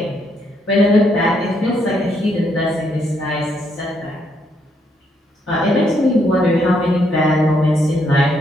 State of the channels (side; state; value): both; normal; correlation 0.74